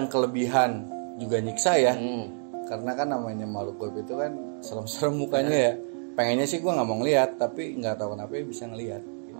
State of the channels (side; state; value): left; silent; digital silence